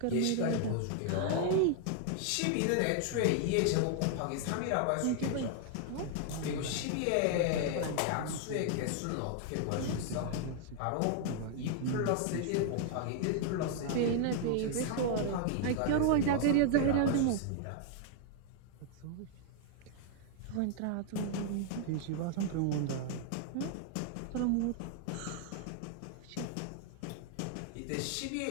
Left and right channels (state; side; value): different; both; correlation 0.00